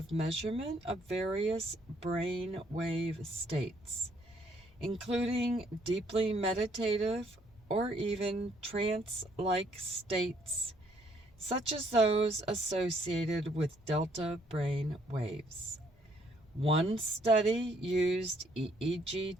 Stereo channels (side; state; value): both; normal; correlation 0.67